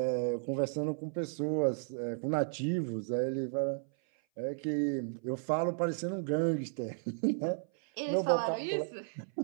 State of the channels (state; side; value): silent; left; 55 dB below the other